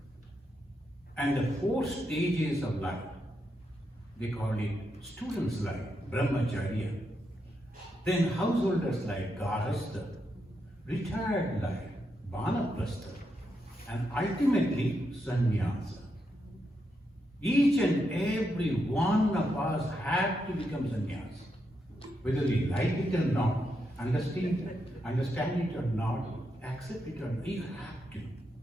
And the 4 stages of life, they call it students' life, brahmacharya. Then householders' life, garhastha. Retired life, vanaprastha. And ultimately, sannyasa. Each and every one of us have to become sannyasi. Whether we like it or not, understand it or not, accept it or not, you have to.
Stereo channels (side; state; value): both; normal; correlation 0.83